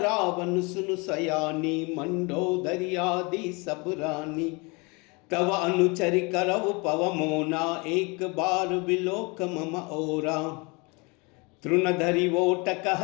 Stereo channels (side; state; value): right; quieter; 28.7 dB